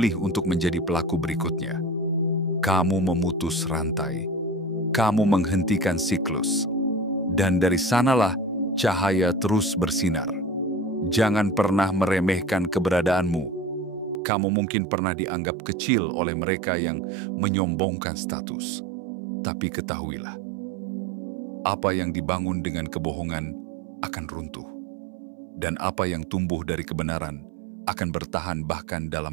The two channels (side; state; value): left; drops out; at 14.2 s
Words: untuk menjadi pelaku berikutnya. Kamu memutus rantai. Kamu menghentikan siklus. Dan dari sanalah cahaya terus bersinar. Jangan pernah meremehkan keberadaanmu. Kamu mungkin pernah dianggap kecil oleh mereka yang menyombongkan status. Tapi ketahuilah, apa yang dibangun dengan kebohongan akan runtuh. Dan apa yang tumbuh dari kebenaran akan bertahan bahkan